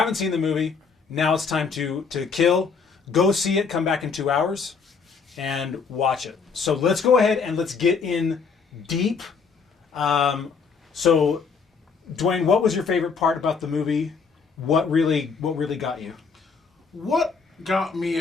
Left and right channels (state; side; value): quieter; right; 5.4 dB